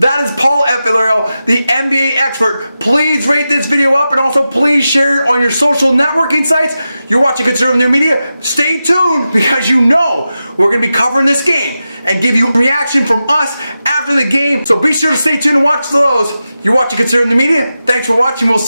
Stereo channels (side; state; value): both; inverted; correlation -0.91